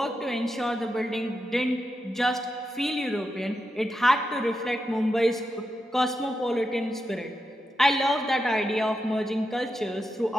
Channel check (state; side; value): normal; both; correlation 0.87